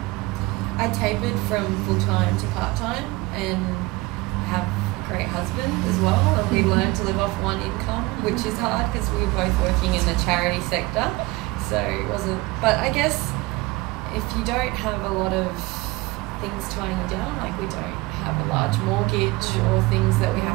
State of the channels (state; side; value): quieter; left; 21.8 dB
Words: I tapered from full-time to part-time, and I have a great husband as well, and we learned to live off one income, which is hard because we were both working in the charity sector, so it wasn't, but I guess if you don't have a lot of things tying you down, we don't have a large mortgage or things that we